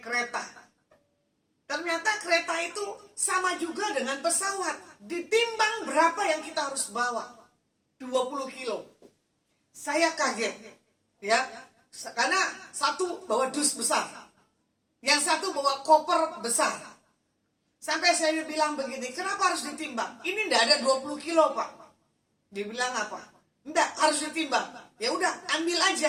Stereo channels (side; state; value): both; identical; correlation 1.00